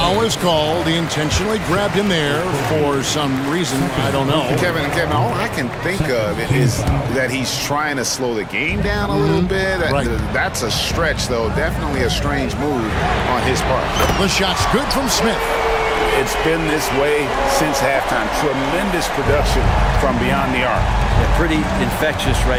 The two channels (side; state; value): both; identical; correlation 1.00